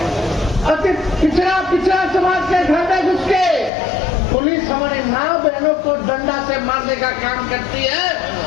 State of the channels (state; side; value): drops out; right; at 3.7 s